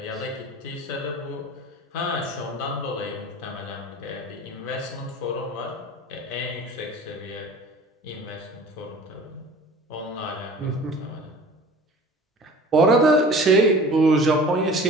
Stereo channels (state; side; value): normal; both; correlation 0.42